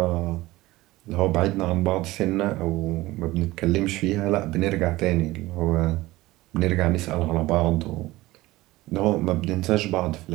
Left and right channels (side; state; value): left; quieter; 18.7 dB